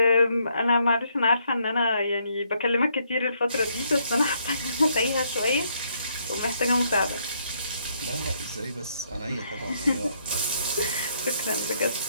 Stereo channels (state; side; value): inverted; both; correlation -0.72